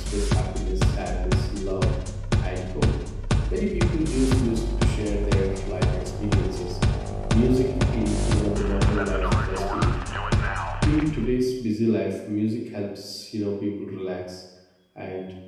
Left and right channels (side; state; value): both; identical; correlation 1.00